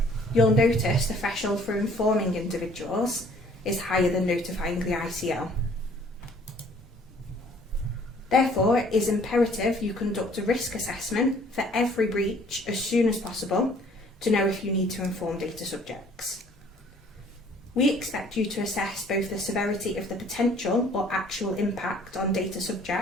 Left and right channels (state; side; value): normal; both; correlation 0.57